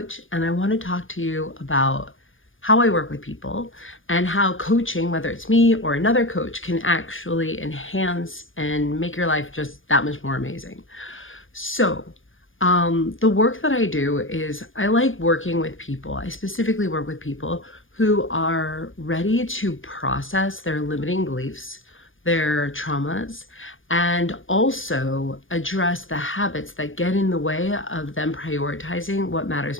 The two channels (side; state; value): right; late; 0.58 ms